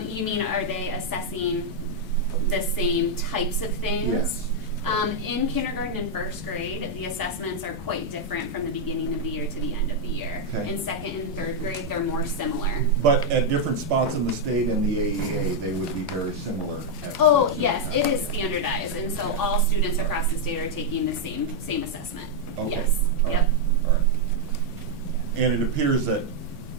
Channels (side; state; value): both; normal; correlation -0.02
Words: You mean, are they assessing the same types of things? Yes. In kindergarten and first grade, the assessments are quite different from the beginning of the year to the end of the year. Okay. In second and third grade, they're more similar. But at different spots in the state and the AEA, they would be very similar at Oh, similar yes, times. it is Yeah. standardized, and so Okay. all students across the state are taking the same assessment. Okay. Yes, All right. yep. All right. And it appears that